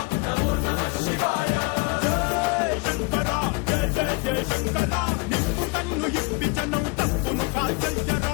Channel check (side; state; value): right; quieter; 28.9 dB